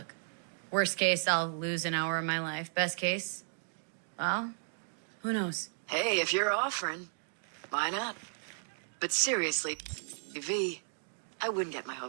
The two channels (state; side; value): silent; left; digital silence